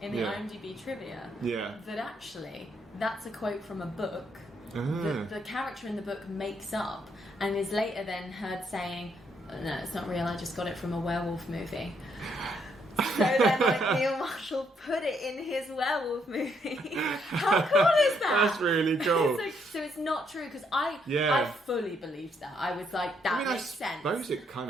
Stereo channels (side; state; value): both; normal; correlation 0.73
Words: in the IMDb trivia that actually that's a quote from a book that the character in the book makes up and is later then heard saying, no, it's not real, I just got it from a werewolf movie. So then, like, Neil Marshall put it in his werewolf movie. How cool is that? That's really cool. So it's not true, because I fully believed that. I was like, that makes sense. I suppose it kind